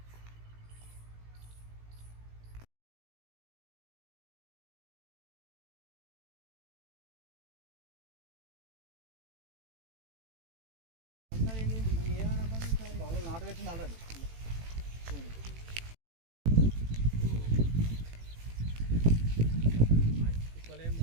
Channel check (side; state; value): left; late; 18 ms